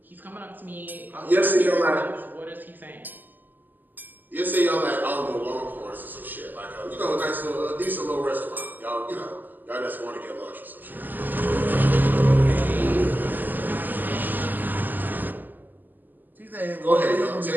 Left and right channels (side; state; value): left; late; 0.087 ms